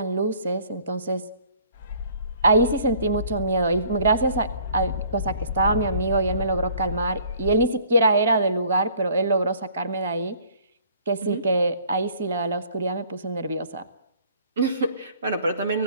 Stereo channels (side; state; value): both; inverted; correlation -0.56